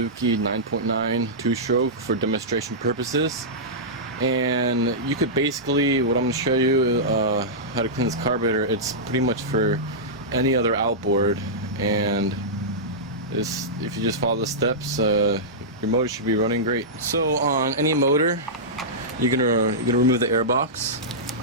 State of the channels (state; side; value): normal; both; correlation -0.14